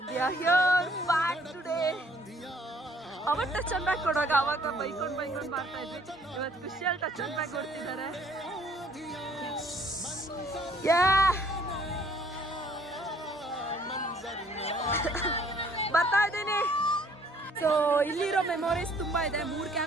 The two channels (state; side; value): normal; both; correlation 0.61